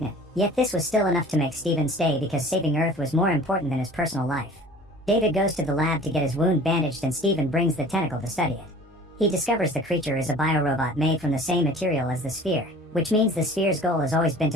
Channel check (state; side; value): normal; both; correlation 0.45